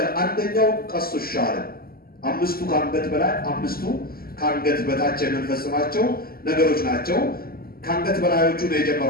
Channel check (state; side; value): late; right; 0.43 ms